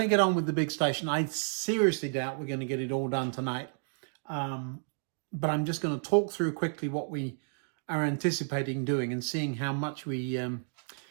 get on with the big station. I seriously doubt we're going to get it all done tonight. But I'm just going to talk through quickly what we are anticipating doing and seeing how much we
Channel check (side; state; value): left; silent; digital silence